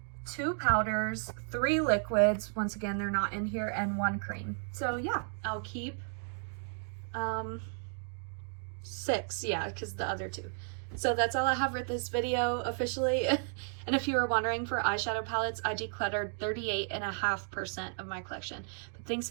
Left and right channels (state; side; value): silent; left; 55 dB below the other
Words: 2 powders, 3 liquids, once again they're not in here, and 1 cream. So yeah, I'll keep 6, yeah, because the other 2. So that's all I have for this video officially. And if you were wondering, for eyeshadow palettes, I decluttered 38.5% of my collection. But thanks